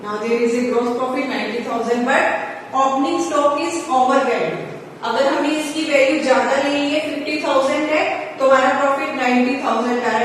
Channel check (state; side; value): identical; both; correlation 1.00